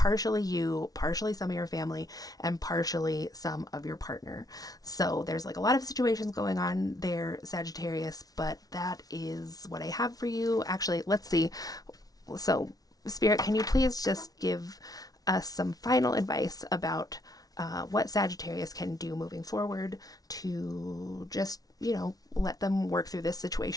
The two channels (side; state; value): right; late; 0.18 ms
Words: you, partially some of your family, and partially some of your partner. So there's like a lot of situations going on there, Sagittarius, but that is what I have for you. Actually, let's see. So, Spirit, can you please just give us some final advice about what Sagittarius can do moving forward to just, let them work through this